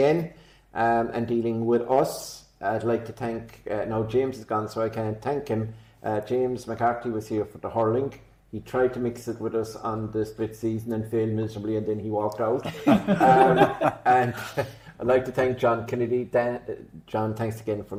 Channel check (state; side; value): identical; both; correlation 1.00